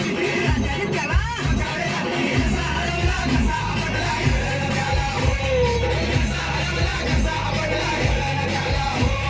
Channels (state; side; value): identical; both; correlation 1.00